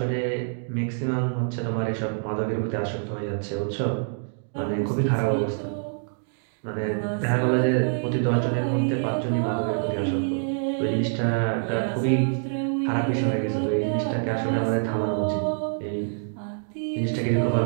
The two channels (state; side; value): silent; left; digital silence